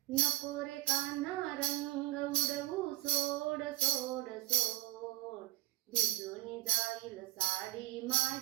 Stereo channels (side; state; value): left; quieter; 17.5 dB